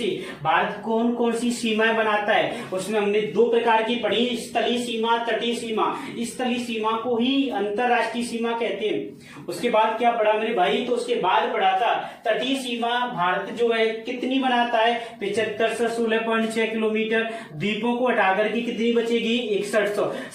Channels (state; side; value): identical; both; correlation 1.00